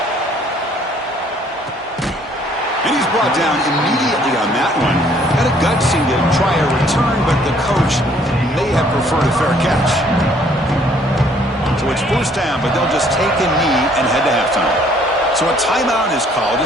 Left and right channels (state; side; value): normal; both; correlation 0.61